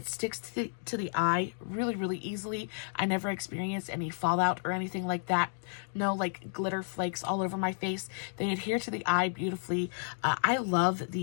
sticks to the eye really easily. I never experienced any fallout or anything like that. No like glitter flakes all over my face. They adhere to the eye beautifully. I love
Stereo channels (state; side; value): silent; right; digital silence